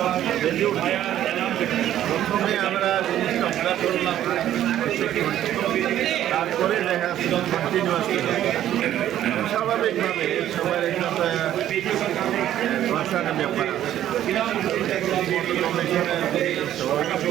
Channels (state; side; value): quieter; left; 11.9 dB